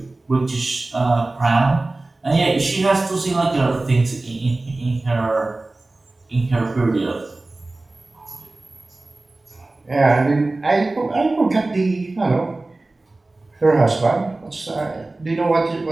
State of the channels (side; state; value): left; quieter; 3.0 dB